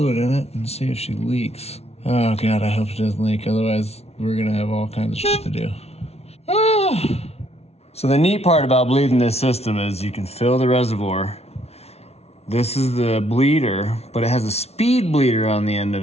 in it and see if she leaks. Oh God, I hope it doesn't leak. Otherwise, we're gonna have all kinds of shit to do. So the neat part about bleeding this system is you can fill the reservoir. This is the bleeder, but it has a speed bleeder on the end of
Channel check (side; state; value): right; late; 0.31 ms